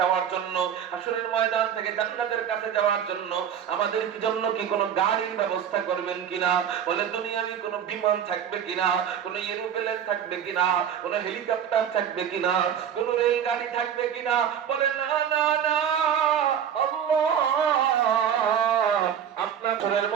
জন্য, হাশরের ময়দান থেকে জান্নাতের কাছে যাওয়ার জন্য আমাদের জন্য কি কোনো গাড়ির ব্যবস্থা করবেন কিনা? বলে দুনিয়াবি কোনো বিমান থাকবে কিনা, কোনো এরোপ্লেন থাকবে কিনা, কোনো হেলিকপ্টার থাকবে কিনা, কোনো রেলগাড়ি থাকবে কিনা? বলে না না না আল্লাহ, আপনার হাশরের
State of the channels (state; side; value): quieter; left; 8.8 dB